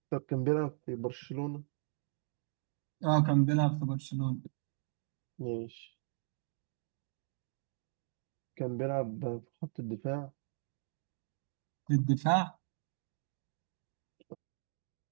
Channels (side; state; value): left; silent; digital silence